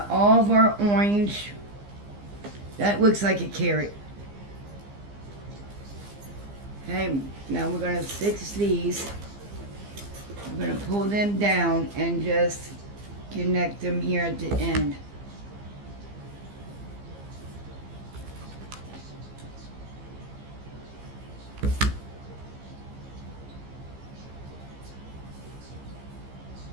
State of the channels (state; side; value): late; left; 15 ms